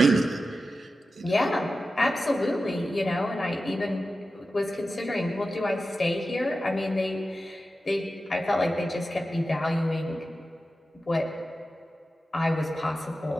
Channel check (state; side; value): normal; both; correlation 0.93